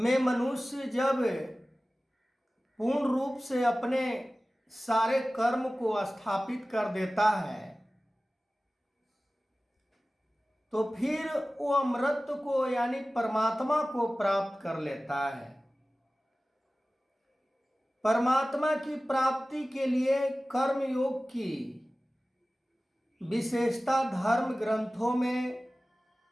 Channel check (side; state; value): both; normal; correlation 0.97